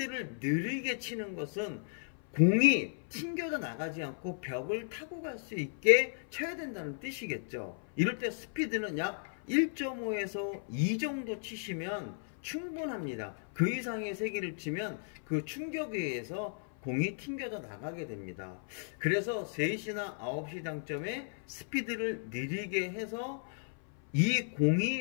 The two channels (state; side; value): silent; right; 55 dB below the other